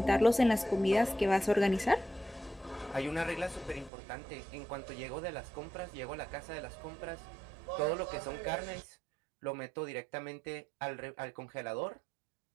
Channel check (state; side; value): drops out; left; at 3.9 s